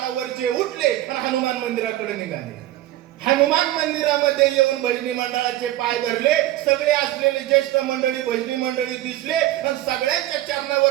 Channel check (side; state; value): left; quieter; 14.8 dB